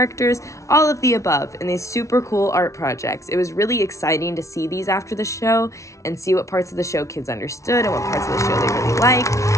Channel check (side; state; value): right; late; 0.14 ms